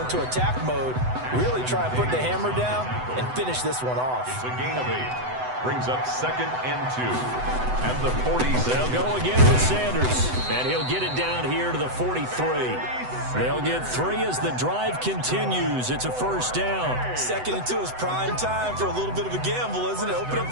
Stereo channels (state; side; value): late; left; 7.9 ms